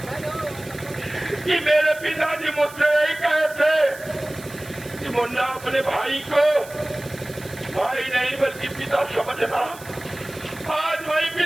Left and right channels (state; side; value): noise; right; hiss, 18 dB below the sound